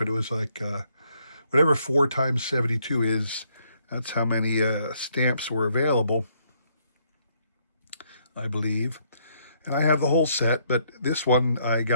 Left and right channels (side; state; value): both; inverted; correlation -0.70